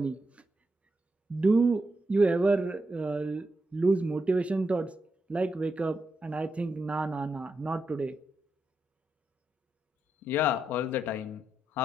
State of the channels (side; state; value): both; normal; correlation 0.84